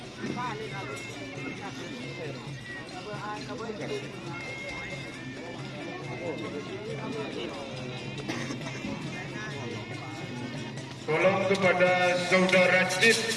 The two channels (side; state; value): both; identical; correlation 1.00